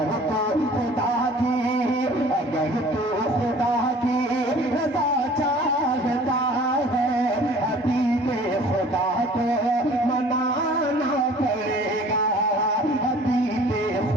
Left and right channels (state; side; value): normal; both; correlation 0.49